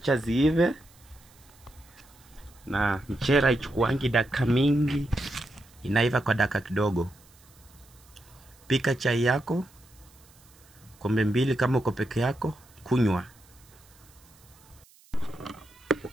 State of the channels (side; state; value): right; noise; hiss, 27 dB below the sound